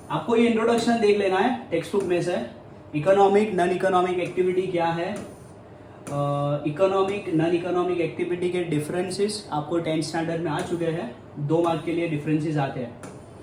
आपको ये introduction देख लेना है टेक्स्ट बुक में से. इकोनॉमिक नॉन इकोनॉमिक एक्टिविटी क्या है, इकोनॉमिक नॉन इकोनॉमिक एक्टिविटी के डिफरेंसेस आपको 10th स्टैंडर्ड में आ चुके हैं. 2 मार्क के लिए डिफरेंसेस आते हैं.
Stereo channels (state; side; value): identical; both; correlation 1.00